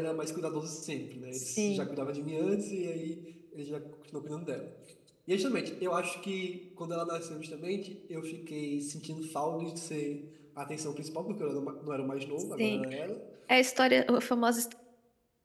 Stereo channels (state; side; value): identical; both; correlation 1.00